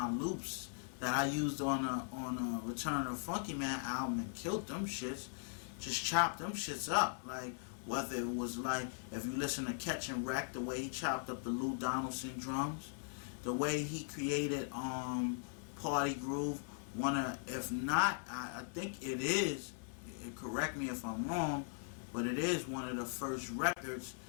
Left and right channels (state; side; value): silent; right; 51 dB below the other